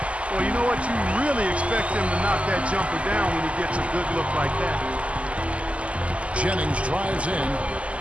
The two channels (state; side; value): late; left; 0.061 ms